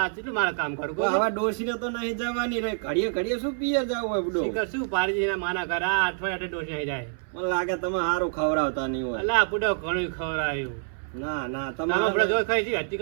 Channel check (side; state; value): left; silent; 60 dB below the other